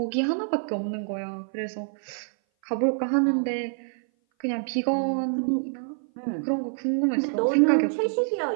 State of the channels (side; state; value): left; silent; 57 dB below the other